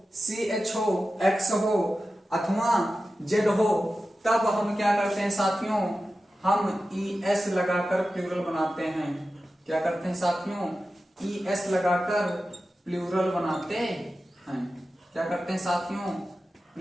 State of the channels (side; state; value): both; normal; correlation 0.93